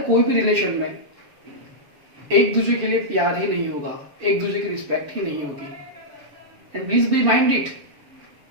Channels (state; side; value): late; left; 6.9 ms